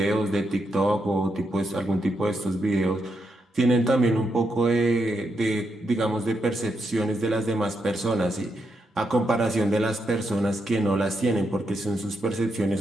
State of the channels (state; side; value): normal; both; correlation 0.82